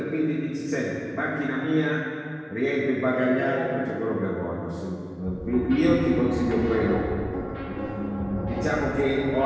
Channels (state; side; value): identical; both; correlation 1.00